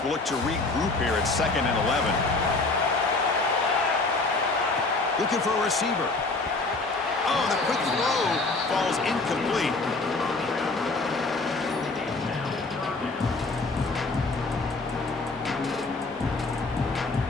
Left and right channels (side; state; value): right; quieter; 3.5 dB